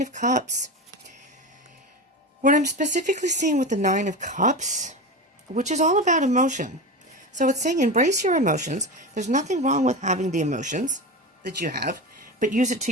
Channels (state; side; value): normal; both; correlation 0.24